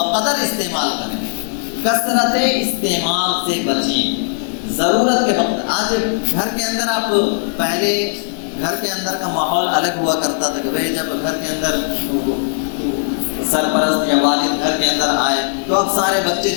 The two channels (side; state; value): right; silent; digital silence